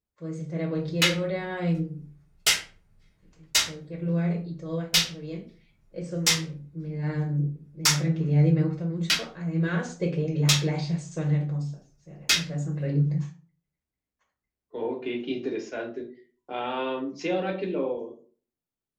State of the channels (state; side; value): identical; both; correlation 1.00